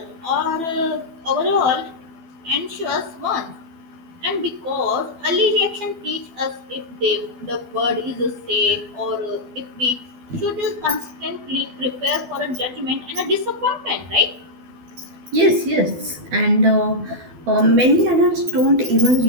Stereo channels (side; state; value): left; late; 12 ms